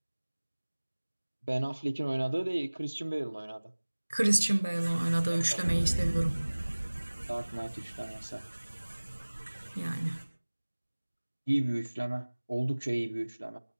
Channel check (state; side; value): inverted; both; correlation -1.00